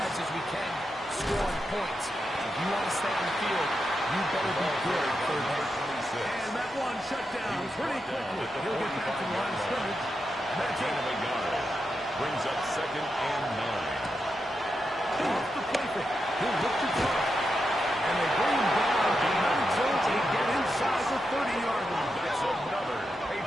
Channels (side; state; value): both; normal; correlation 0.87